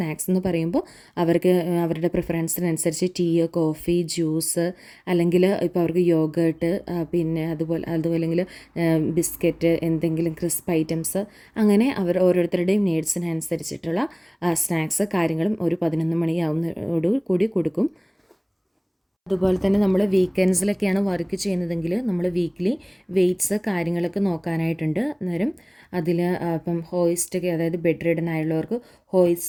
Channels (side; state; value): both; identical; correlation 1.00